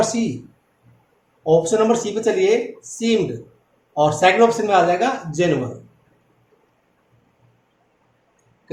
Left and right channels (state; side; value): identical; both; correlation 1.00